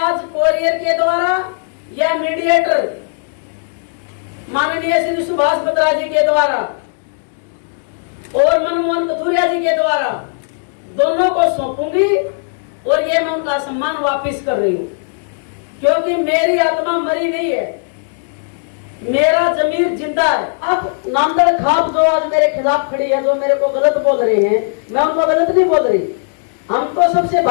कोरियर के द्वारा या मीडिएटर माननीय श्री सुभाष बत्रा जी के द्वारा और मनमोहन कथुरिया जी के द्वारा दोनों को सौंपूंगी और ये मैं उनका सम्मान वापस कर रही हूँ, क्योंकि मेरी आत्मा मरी नहीं है, मेरा जमीर जिंदा है। अब नांदड़ खाप जो आज मेरे खिलाफ खड़ी है, जो मेरे को गलत बोल रहे हैं, मैं उनको गलत नहीं बोल रही। हम तो सबसे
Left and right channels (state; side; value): silent; right; digital silence